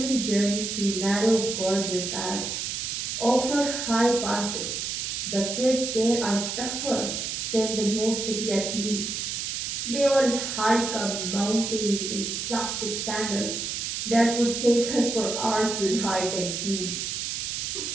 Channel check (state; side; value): noise; right; hiss, 3 dB below the sound